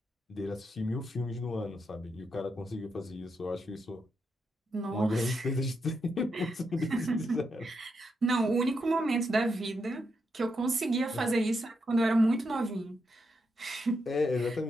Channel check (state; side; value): normal; both; correlation 0.83